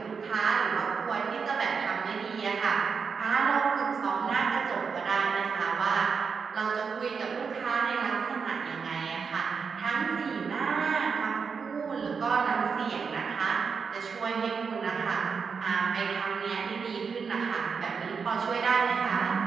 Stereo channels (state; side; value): quieter; left; 5.7 dB